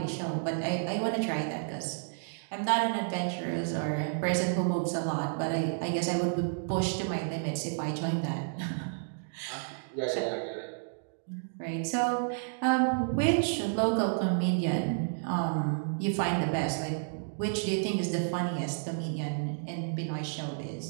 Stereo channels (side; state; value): left; silent; digital silence